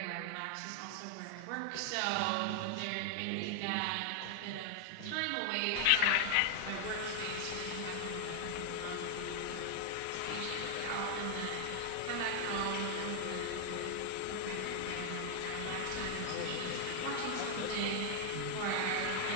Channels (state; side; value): different; both; correlation 0.00